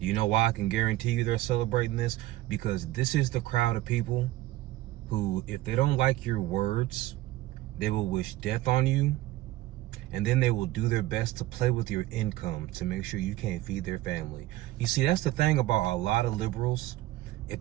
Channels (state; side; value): quieter; left; 16.2 dB